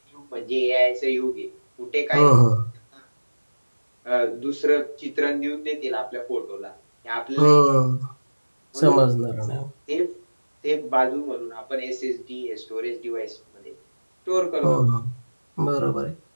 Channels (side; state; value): both; inverted; correlation -1.00